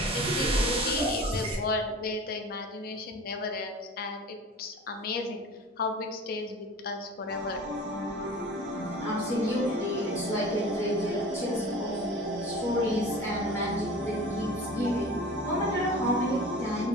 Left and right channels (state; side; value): normal; both; correlation 0.39